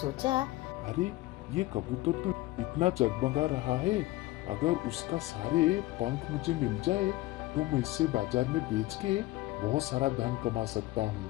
अरे ये कबूतर तो इतना जगमगा रहा है, अगर उसका सारे पंख मुझे मिल जाए तो मैं इसे बाजार में बेच के बहुत सारा धन कमा सकता हूँ,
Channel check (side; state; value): right; quieter; 18.2 dB